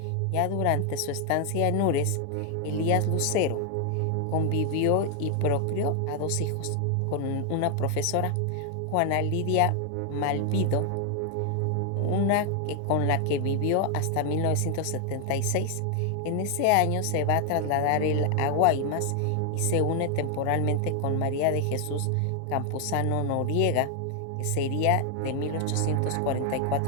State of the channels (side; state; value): both; different; correlation 0.00